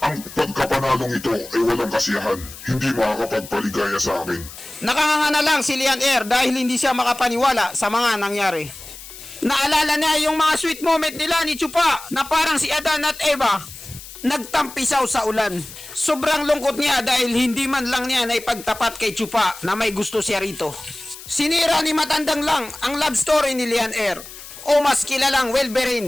Ang pagkapanalong ito ay walang kasiyahan, hindi makakapagpaligaya sa akin. Nakanganga na lang si Lian Air dahil hindi siya makapaniwala sa mga nangyari. Naalala niya yung mga sweet moment nila ni Chupa na parang si Adan at Eva. Nagtampisaw sa ulan. Sobrang lungkot niya dahil hindi man lang niya naipagtapat kay Chupa na may gusto siya rito. Sinira ni Matandang Lang ang love story ni Lian Air o mas kilalang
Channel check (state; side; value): noise; left; hiss, 15 dB below the sound